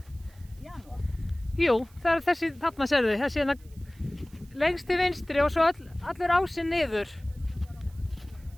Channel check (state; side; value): noise; right; hiss, 28 dB below the sound